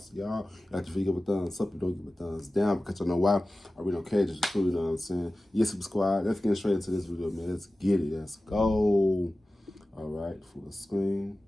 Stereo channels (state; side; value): normal; both; correlation 0.96